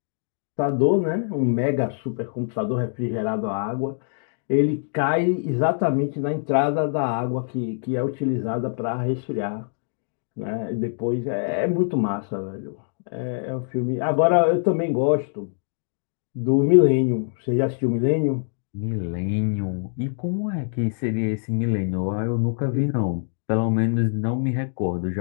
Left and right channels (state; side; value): silent; right; digital silence